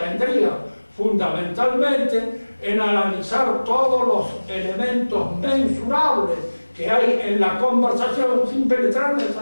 fundamentalmente en analizar todos los elementos mensurables que hay en la conversación sin penetrar en el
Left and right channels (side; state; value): both; inverted; correlation -1.00